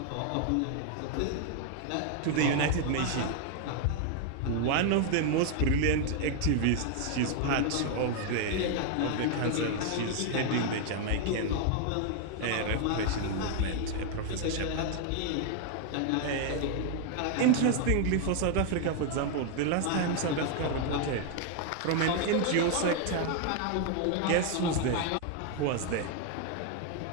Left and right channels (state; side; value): different; both; correlation 0.00